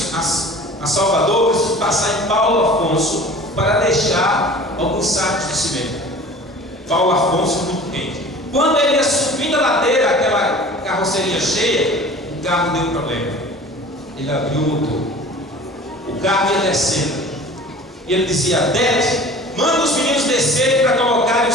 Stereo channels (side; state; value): both; normal; correlation 0.43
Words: a Salvador, precisamos passar em Paulo Afonso para deixar alguns sacos de cimento. Paulo Afonso, muito quente. Quando ele ia subindo a ladeira, aquela carroceria cheia, o carro deu um problema. Ele abriu o motor, o carro ia descendo, e ele dizia: Dete, manda os meninos descerem para colocarem o